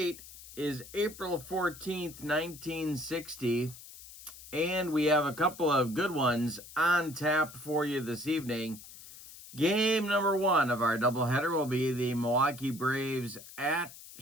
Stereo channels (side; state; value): left; noise; hiss, 17 dB below the sound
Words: is April 14th, 1960. And we have a couple of good ones on tap for you this evening. Game number one of our doubleheader will be the Milwaukee Braves at